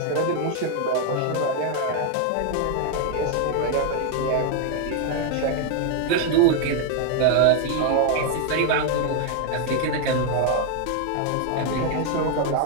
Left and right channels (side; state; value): both; different; correlation 0.01